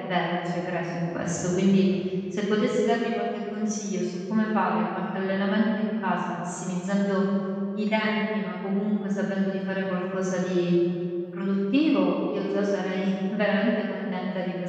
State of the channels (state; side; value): identical; both; correlation 1.00